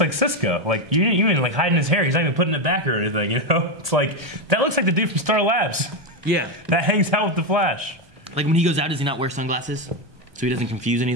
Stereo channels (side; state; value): left; late; 1.2 ms